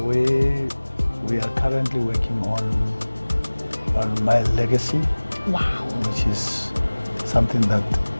are currently working on my legacy, Wow. which is something that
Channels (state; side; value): inverted; both; correlation -1.00